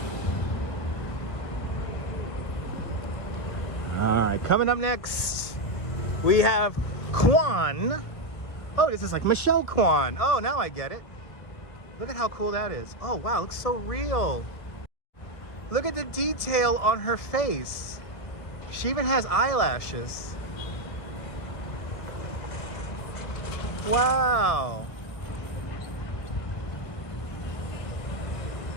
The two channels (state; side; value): late; right; 1.4 ms